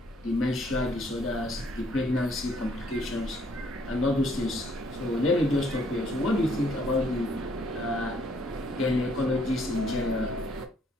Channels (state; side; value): normal; both; correlation 0.66